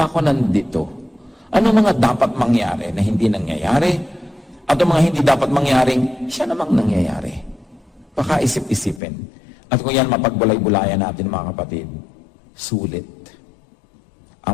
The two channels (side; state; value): right; drops out; at 9.0 s